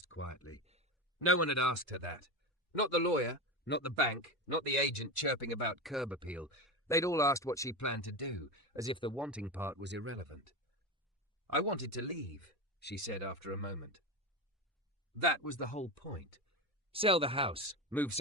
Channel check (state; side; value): normal; both; correlation 0.20